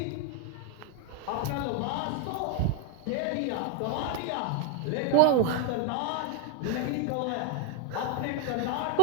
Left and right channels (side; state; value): both; different; correlation 0.01